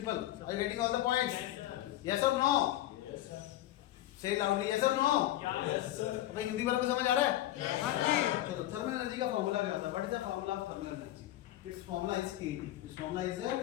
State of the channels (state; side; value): quieter; right; 14.5 dB